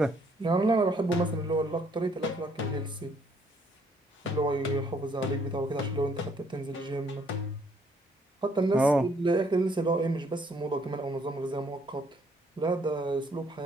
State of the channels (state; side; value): normal; both; correlation 0.66